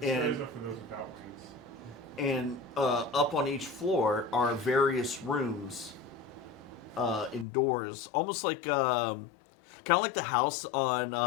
And are for those without wings. And up on each floor are various rooms indoors, almost like kind of like the house on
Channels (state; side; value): drops out; right; at 7.5 s